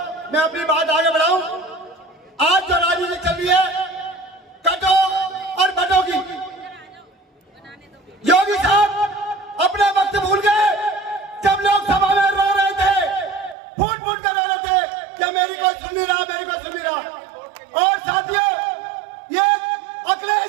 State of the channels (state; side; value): drops out; left; at 13.6 s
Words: मैं अपनी बात आगे बढ़ाऊं। आज जो राजनीति चल रही है कटो और बटो की, योगी साहब अपना वक्त भूल गए। जब लोकसभा में रो रहे थे, फूट फूट कर रो रहे थे कि मेरी कोई सुन नहीं रहा, मेरी कोई सुन नहीं रहा। और साथियों, ये